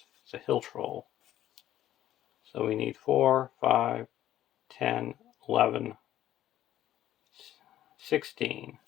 It's a Hill Troll. So we need 4, 5, 10, 11, 16.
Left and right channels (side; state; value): right; quieter; 12.6 dB